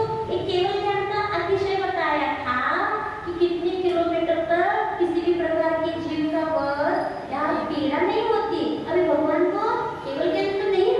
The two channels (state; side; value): identical; both; correlation 1.00